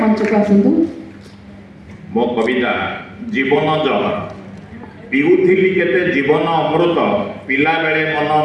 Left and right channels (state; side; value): identical; both; correlation 1.00